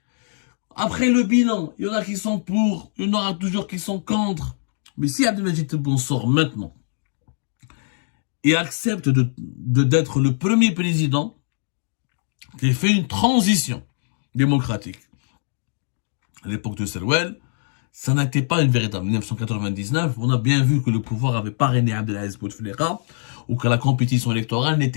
Après le bilan, il y en a qui sont pour, il y en aura toujours qui sont contre. Mais si Abdelmajid Tebboune sort maintenant et accepte d'être le premier président qui fait une transition démocratique, à l'époque de Serwel, ça n'était pas une véritable. En 1999, on a bien vu que le pouvoir avait parrainé Abdelaziz Bouteflika ou que la compétition électorale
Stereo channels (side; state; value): right; silent; digital silence